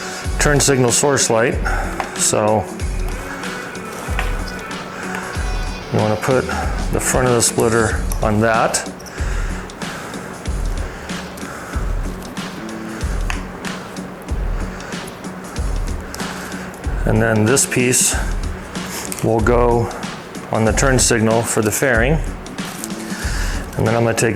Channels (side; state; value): both; identical; correlation 1.00